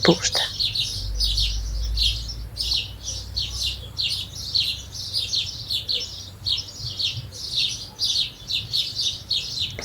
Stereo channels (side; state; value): both; identical; correlation 1.00